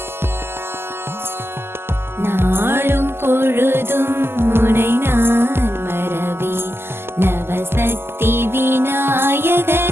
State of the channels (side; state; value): left; late; 0.12 ms